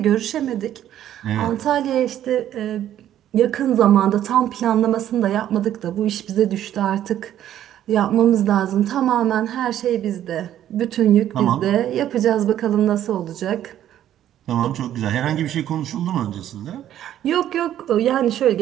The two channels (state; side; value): quieter; left; 11.5 dB